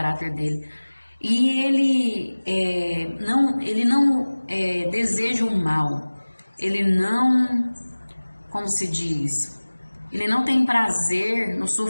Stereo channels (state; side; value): inverted; both; correlation -1.00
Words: dele. E Ele não deseja o mal. Ele não, como se diz, Ele não tem prazer no